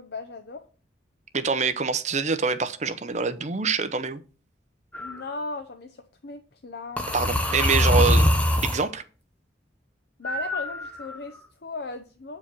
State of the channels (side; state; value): both; normal; correlation 0.44